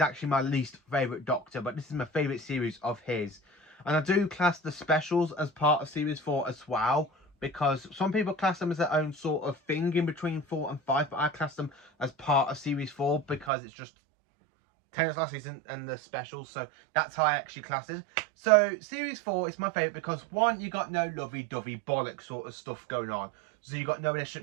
actually my least favourite Doctor. But this is my favourite series of his. And I do class the specials as part of Series 4 as well. Because some people class them as their own sort of thing in between 4 and 5. But I class them as part of Series 4 because it's just Tennant's last season and the specials, so that's how I actually class it. So Series 4 is my favourite because one, you got no lovey-dovey bollock sort of stuff going on. So you got no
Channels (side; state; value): left; drops out; at 13.5 s